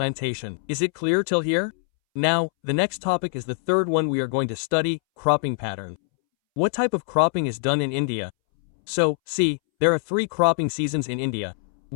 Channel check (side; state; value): right; silent; 63 dB below the other